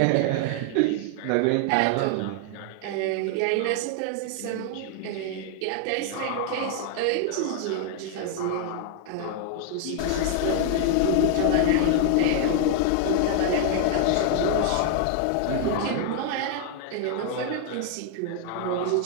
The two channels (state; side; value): different; both; correlation 0.00